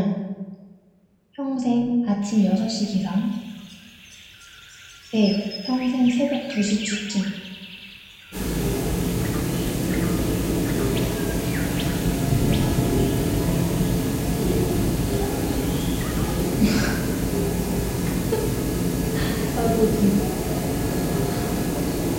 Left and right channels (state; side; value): identical; both; correlation 1.00